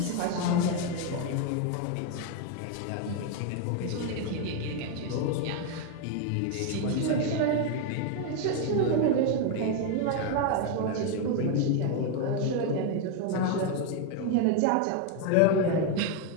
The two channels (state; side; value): different; both; correlation 0.01